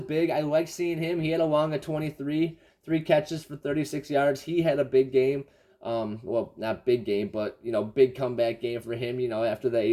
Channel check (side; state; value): both; identical; correlation 1.00